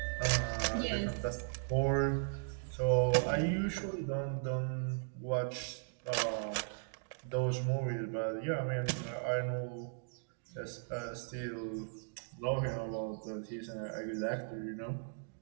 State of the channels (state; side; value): silent; left; digital silence